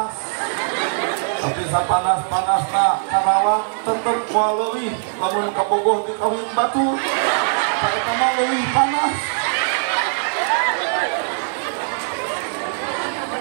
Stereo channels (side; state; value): left; silent; digital silence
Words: Tapi sapanas-panasna Karawang tetep moal leuwih lamun ka Bogoh di Kawin Batu. Eta mah leuwih panas.